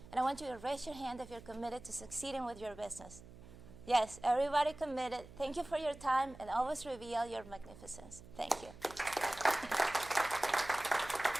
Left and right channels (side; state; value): right; noise; hum, 18 dB below the sound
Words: And I want you to raise your hand if you're committed to succeeding with your business. Yes, everybody committed. Thank you for your time, and always reveal your magnificence. Thank you.